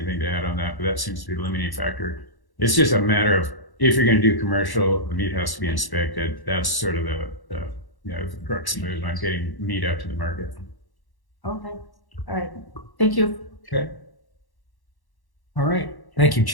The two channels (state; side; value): late; right; 1.1 ms